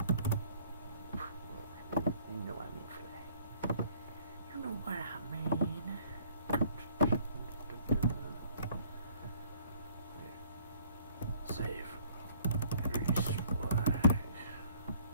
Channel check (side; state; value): both; inverted; correlation -0.59